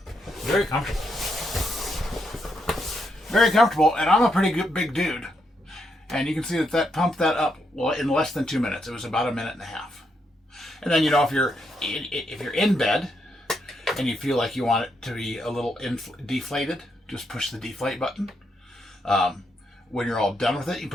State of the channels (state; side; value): normal; both; correlation 0.79